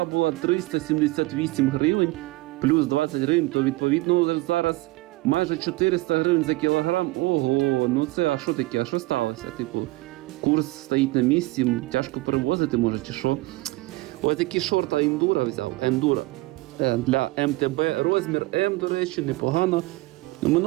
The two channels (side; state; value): left; quieter; 20.9 dB